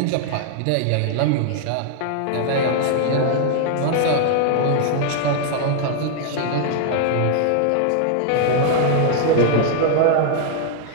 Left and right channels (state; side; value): different; both; correlation 0.00